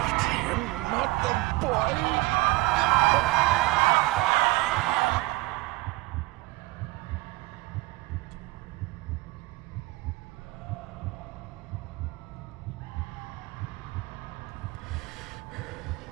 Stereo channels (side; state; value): left; quieter; 22.1 dB